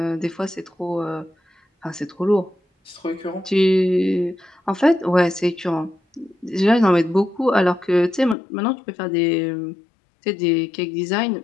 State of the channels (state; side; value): drops out; right; at 8.3 s